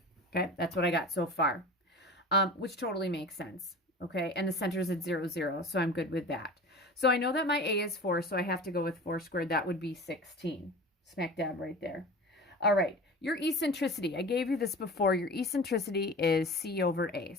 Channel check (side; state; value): both; normal; correlation 0.36